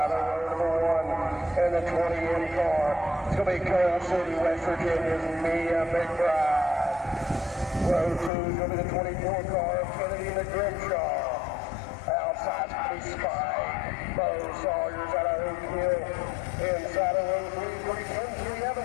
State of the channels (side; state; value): right; drops out; at 8.3 s